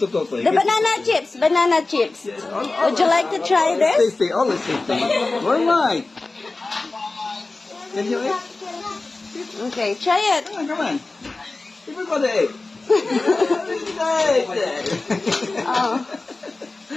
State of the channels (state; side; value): quieter; right; 3.4 dB